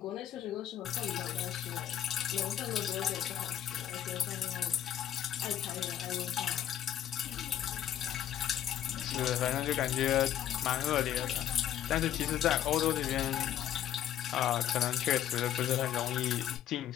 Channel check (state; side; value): quieter; right; 10.9 dB